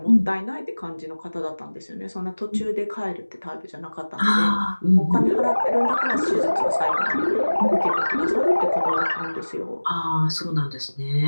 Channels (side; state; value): both; inverted; correlation -1.00